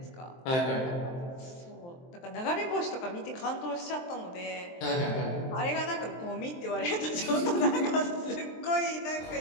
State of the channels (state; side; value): late; right; 23 ms